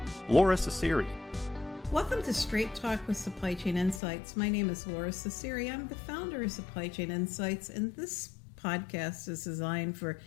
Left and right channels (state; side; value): drops out; right; at 4.0 s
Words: Lora Cecere. Welcome to Straight Talk with Supply Chain Insights. My name is Lora Cecere. I'm the founder of Supply Chain Insights, and this podcast is designed for